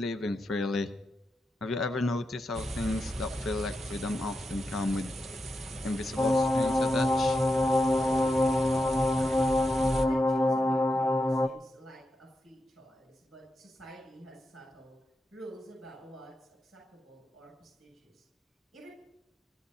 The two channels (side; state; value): both; normal; correlation 0.87